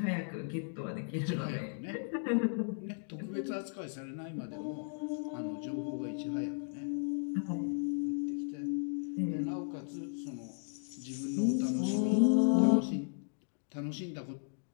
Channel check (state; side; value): silent; right; digital silence